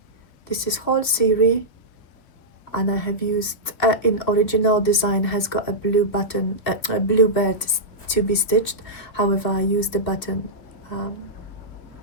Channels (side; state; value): right; late; 3.0 ms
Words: this is whole series, and I have used in original design has got a blue button, a blue bird to be stitched. However, I used the button,